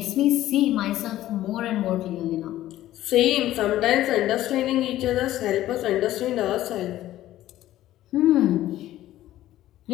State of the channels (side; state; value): right; quieter; 14.1 dB